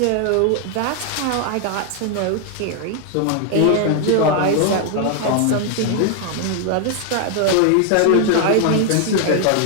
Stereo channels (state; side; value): different; both; correlation 0.00